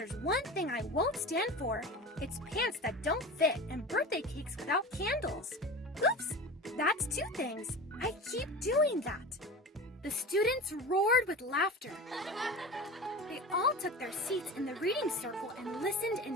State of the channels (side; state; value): both; normal; correlation 0.32